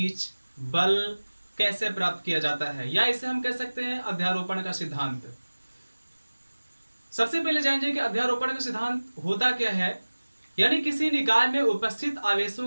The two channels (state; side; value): inverted; both; correlation -1.00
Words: बल कैसे प्राप्त किया जाता है, या इसे हम कह सकते हैं अध्यारोपण का सिद्धांत। सबसे पहले जानेंगे कि अध्यारोपण का सिद्धांत होता क्या है। यानी किसी निकाय में उपस्थित